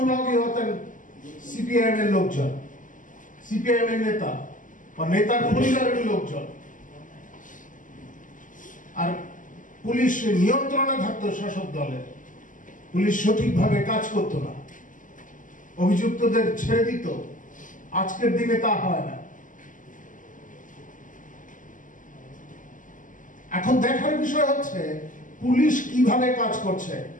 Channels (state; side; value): late; right; 0.38 ms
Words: হতেন সিপিআইএম এর লোকজন, সিপিআইএম এর নেতা বা নেতার পরিবারের লোকজন। আর পুলিশ নিয়ন্ত্রণে থাকতো শাসক দলের, পুলিশ সঠিকভাবে কাজ করতো না, অভিযুক্তদের ছেড়ে দিত। আজকের দিনে তা হয় না। এখন দেখার বিষয় হচ্ছে পুলিশ কিভাবে কাজ করছে।